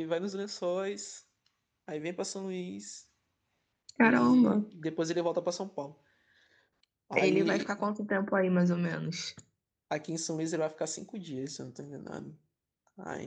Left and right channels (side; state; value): both; identical; correlation 1.00